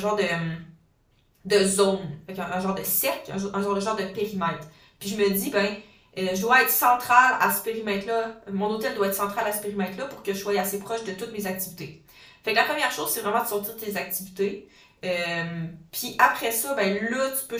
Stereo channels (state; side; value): identical; both; correlation 1.00